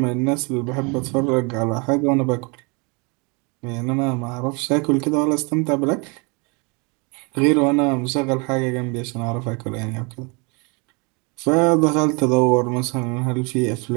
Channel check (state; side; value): quieter; left; 31.2 dB